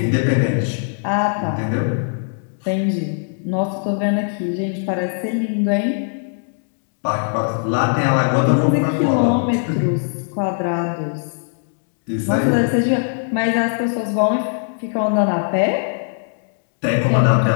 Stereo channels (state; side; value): silent; right; digital silence